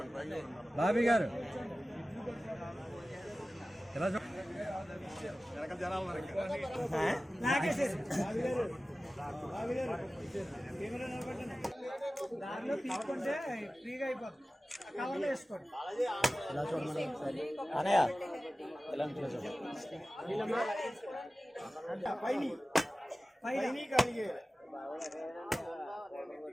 బాబీ గారు ఎలా దారిలో తీసుకుంటే ఫ్రీగా అయిపోతుంది. కవర్లో వేసుకోండి. ఇలా చూడండి ఒకసారి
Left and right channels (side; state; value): both; normal; correlation 0.96